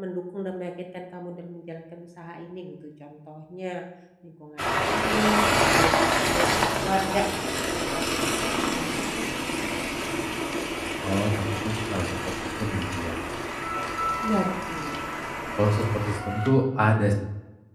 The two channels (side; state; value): both; identical; correlation 1.00